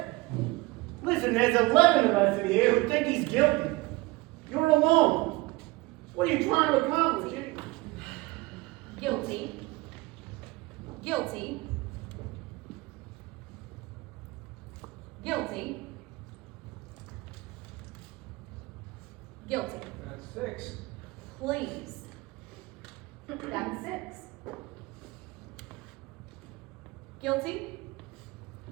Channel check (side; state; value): left; quieter; 22.0 dB